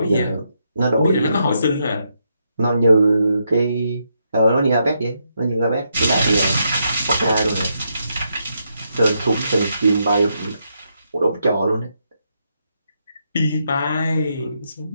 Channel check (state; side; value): inverted; both; correlation -0.80